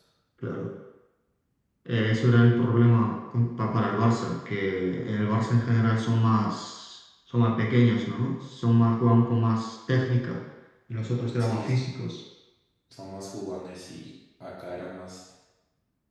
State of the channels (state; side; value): identical; both; correlation 1.00